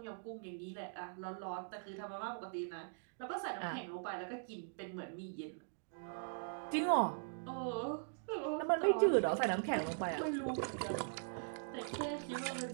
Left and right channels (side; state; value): left; silent; digital silence